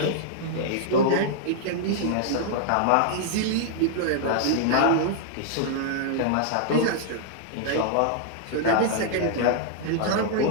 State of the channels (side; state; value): both; different; correlation -0.01